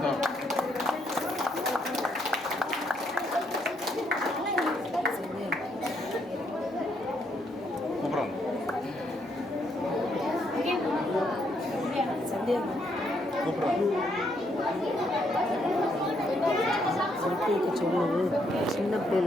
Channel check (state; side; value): normal; both; correlation 0.74